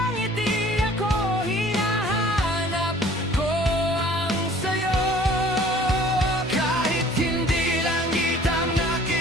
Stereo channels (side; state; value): both; normal; correlation 0.51